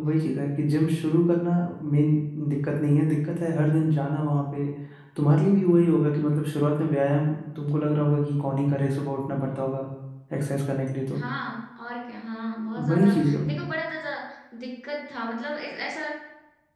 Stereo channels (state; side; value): identical; both; correlation 1.00